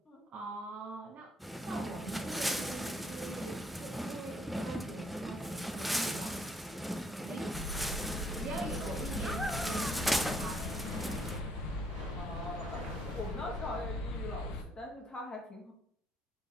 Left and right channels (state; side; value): normal; both; correlation 0.69